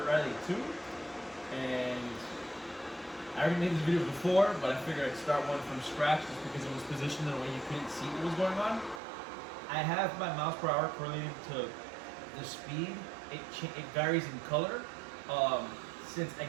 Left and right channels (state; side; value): drops out; left; at 9.0 s